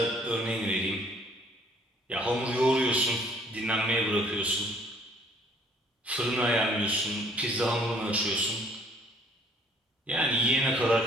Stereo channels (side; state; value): both; normal; correlation 0.59